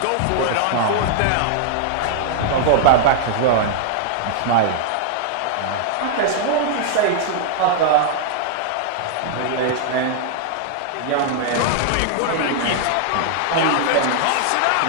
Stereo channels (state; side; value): different; both; correlation -0.01